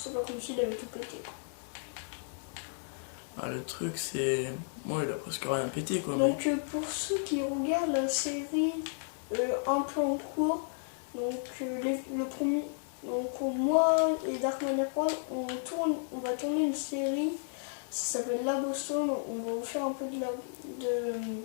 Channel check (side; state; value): right; silent; 56 dB below the other